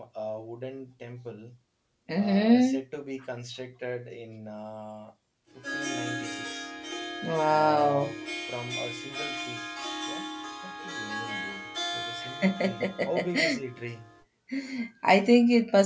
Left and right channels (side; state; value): both; identical; correlation 1.00